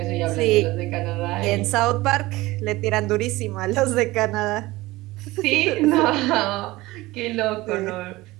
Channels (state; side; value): quieter; left; 19.5 dB